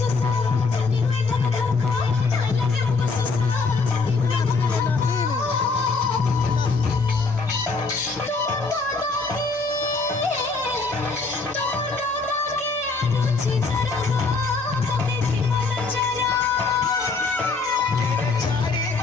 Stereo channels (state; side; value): quieter; right; 4.1 dB